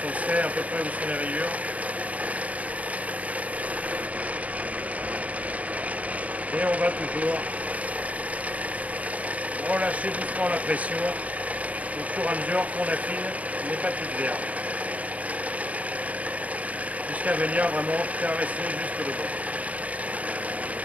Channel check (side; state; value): left; late; 0.070 ms